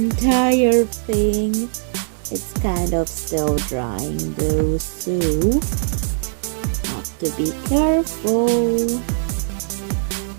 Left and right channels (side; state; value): left; silent; digital silence